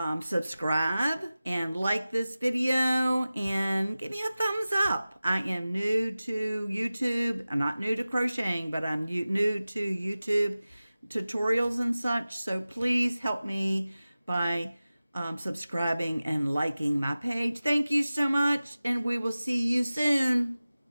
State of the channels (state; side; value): inverted; both; correlation -0.96